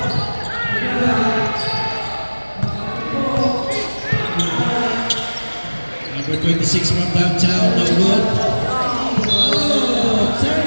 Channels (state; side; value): inverted; both; correlation -1.00